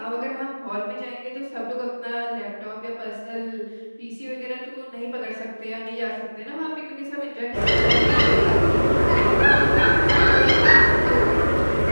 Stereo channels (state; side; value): inverted; both; correlation -1.00